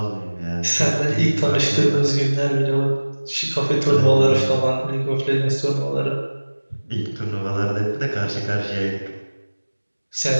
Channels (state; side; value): inverted; both; correlation -1.00